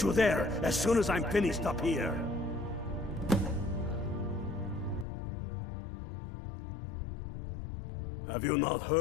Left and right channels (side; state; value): right; drops out; at 5.1 s